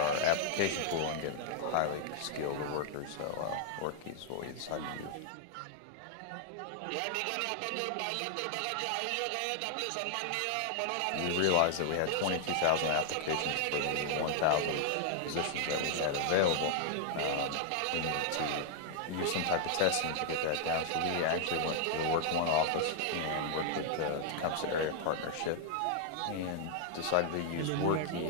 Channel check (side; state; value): both; different; correlation 0.00